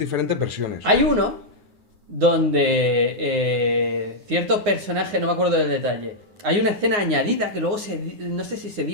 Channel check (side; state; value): left; late; 9.6 ms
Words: versiones. Hay uno donde cierto personaje, no me acuerdo del detalle, hay una escena añadida que luego no sé si se